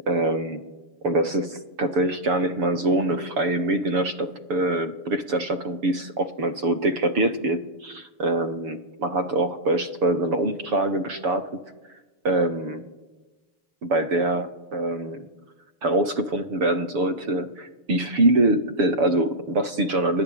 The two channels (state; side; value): late; left; 6.9 ms